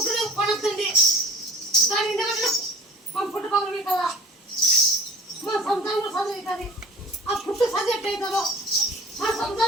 కొనొద్దండి దాని ఎందుకంటే మా పుట్ట పగలవి కదా మా సంతానం కూడా చదువుతుంది ఆ పుట్టు చదివేట్ అవుతుందో మా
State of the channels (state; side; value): normal; both; correlation 0.46